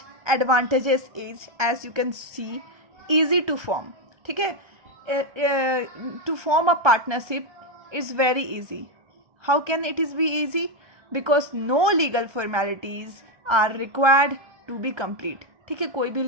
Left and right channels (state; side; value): late; left; 1.3 ms